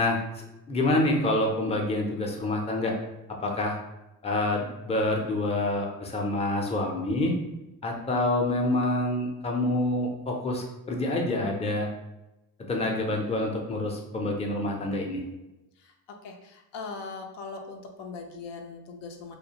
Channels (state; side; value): normal; both; correlation 0.25